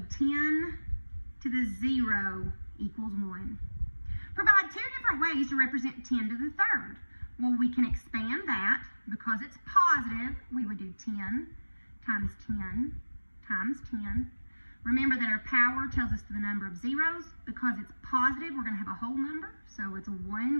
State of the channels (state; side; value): inverted; both; correlation -1.00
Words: 10 to the 0 equals 1. Provide two different ways to represent 10 to the third. Well, we can expand that. Because it's positive, we would do 10 times 10 times 10. Remember that our power tells us the number of zeros. Because it's positive, we're going to have a whole number. So it's a